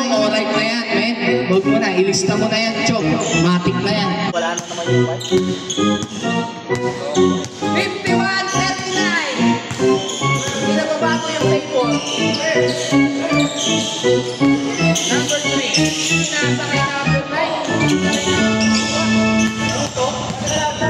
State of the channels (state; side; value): identical; both; correlation 1.00